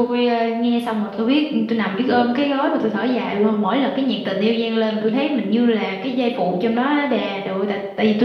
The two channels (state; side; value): identical; both; correlation 1.00